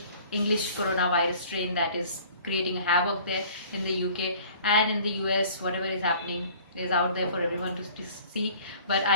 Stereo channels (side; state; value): both; inverted; correlation -0.50